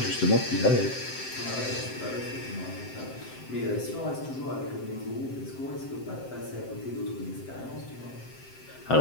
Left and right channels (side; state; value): right; late; 7.7 ms